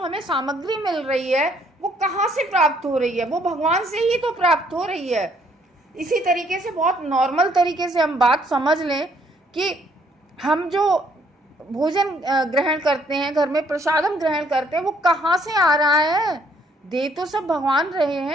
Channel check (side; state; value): both; normal; correlation 0.66